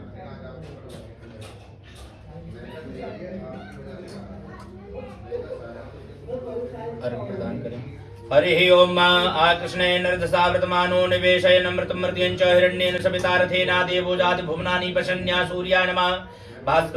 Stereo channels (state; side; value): identical; both; correlation 1.00